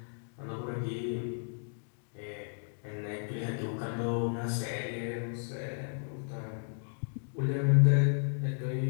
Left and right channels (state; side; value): silent; right; digital silence